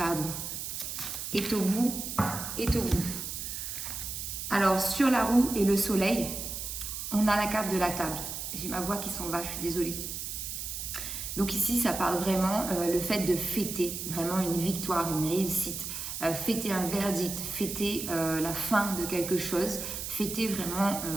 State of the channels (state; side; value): noise; right; hiss, 6 dB below the sound